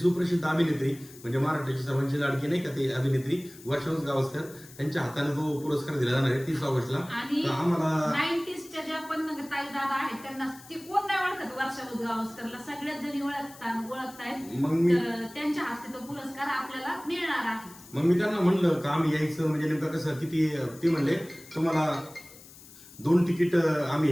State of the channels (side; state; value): left; noise; hiss, 20 dB below the sound